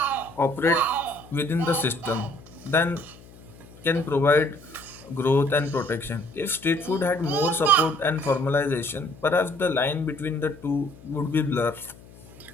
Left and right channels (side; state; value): left; noise; hum, 21 dB below the sound